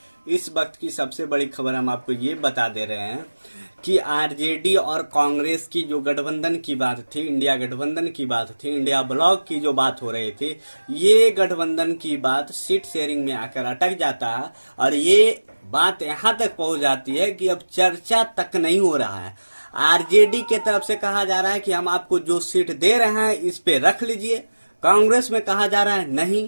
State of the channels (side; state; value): both; inverted; correlation -1.00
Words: इस वक्त की सबसे बड़ी खबर हम आपको ये बता दे रहे हैं कि आरजेडी और कांग्रेस की जो गठबंधन की बात थी, इंडिया गठबंधन की बात थी, इंडिया ब्लॉक की जो बात हो रही थी, ये गठबंधन की बात सीट शेयरिंग में आकर अटक जाता है और ये बात यहाँ तक पहुँच जाती है कि अब चर्चा तक नहीं हो रहा है। आरजेडी के तरफ से कहा जा रहा है कि हम आपको जो सीट दे रहे हैं इस पे रख लीजिए। कांग्रेस में कहा जा रहा है नहीं।